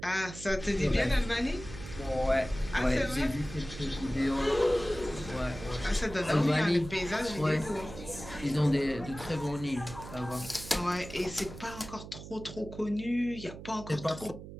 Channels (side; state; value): right; noise; hum, 13 dB below the sound